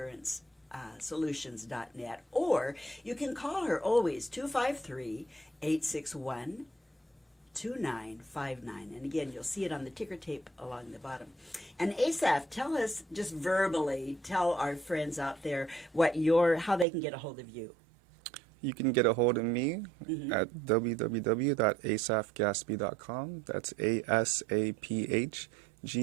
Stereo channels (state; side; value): drops out; left; at 16.9 s